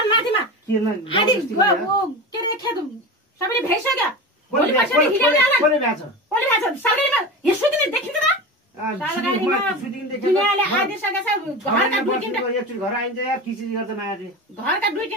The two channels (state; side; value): normal; both; correlation 0.27